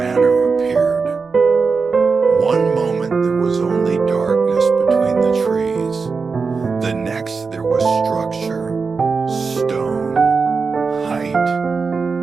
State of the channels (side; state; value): left; quieter; 4.8 dB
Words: appeared. One moment there was only darkness between the trees. The next there was structure, stone, height,